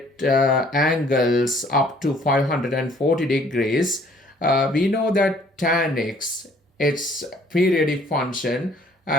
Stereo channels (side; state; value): both; normal; correlation 0.59